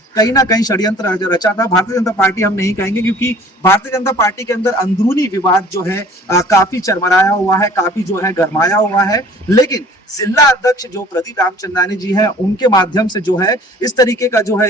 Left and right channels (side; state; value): both; normal; correlation 0.50